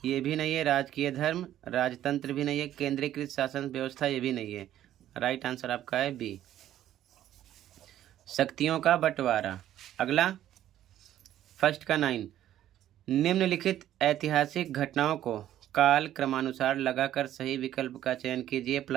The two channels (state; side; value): quieter; left; 12.2 dB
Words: ये भी नहीं है, राजकीय धर्म, राजतंत्र भी नहीं है, केंद्रीकृत शासन व्यवस्था ये भी नहीं है। राइट आंसर आपका है बी, शक्तियों का बंटवारा। अगला फर्स्ट का 9, निम्नलिखित ऐतिहासिक घटनाओं को काल क्रमानुसार लगाकर सही विकल्प का चयन कीजिए।